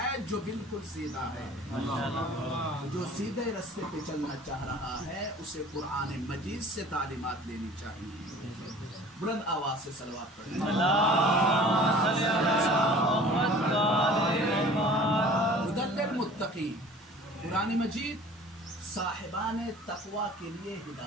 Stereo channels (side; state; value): both; normal; correlation 0.46